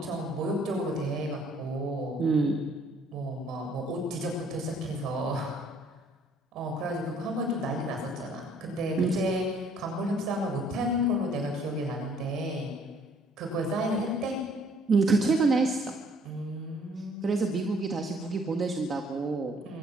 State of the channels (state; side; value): normal; both; correlation 0.61